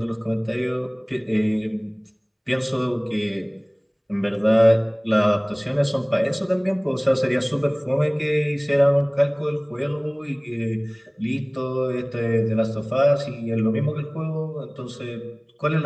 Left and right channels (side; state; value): both; identical; correlation 1.00